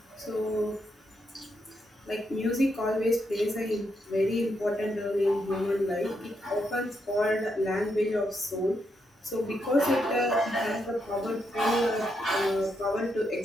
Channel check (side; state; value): both; normal; correlation 0.80